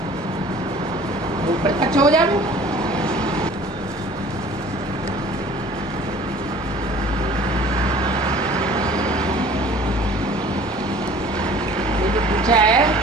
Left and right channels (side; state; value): both; normal; correlation 0.48